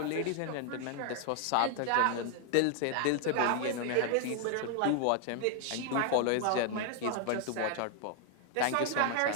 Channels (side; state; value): both; different; correlation 0.00